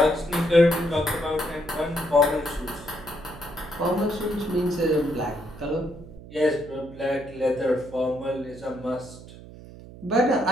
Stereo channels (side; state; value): right; noise; hum, 17 dB below the sound